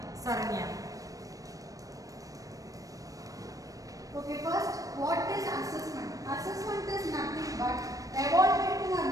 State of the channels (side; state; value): left; late; 0.17 ms